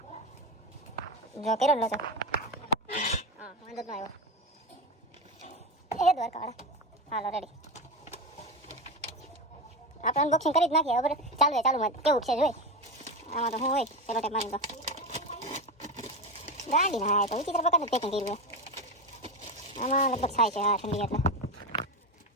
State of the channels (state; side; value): normal; both; correlation 0.18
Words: જો કેરો લો છો. હા વાંધો ન આવ્યો. એ દ્વારકાવાળા. હાલો રેડી. આપણે અનબોક્સિંગ કરી જ નાખીએ. હવે ચાલુમાં કેવું છે જોઈ. આમાં તો શું હોય પેલો ટેપ મારી. તો ગાડી ના તો વિચિત્ર પ્રકારનું પેકિંગ કર્યું. આમાં લગભગ થાય છે. હા ઠંડી એટલે